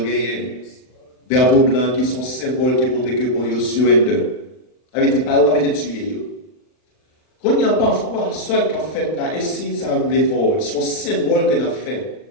gagné. Drapeau blanc qui sont symboles qui montrent que bon, il surrender. Avec des paroles, avec des tués. Quand il y a parfois, soit qu'on fait là, et si ça arrive fort, son symbole que nous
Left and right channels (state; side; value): late; right; 39 ms